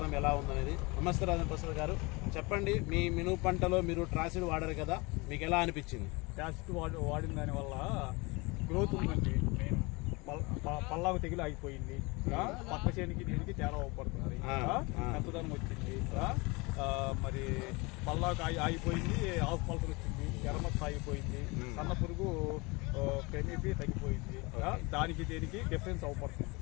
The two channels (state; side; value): quieter; right; 26.1 dB